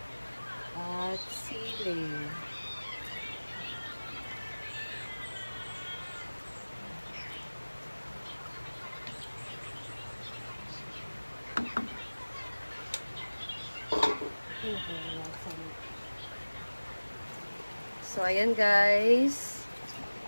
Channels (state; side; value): inverted; both; correlation -1.00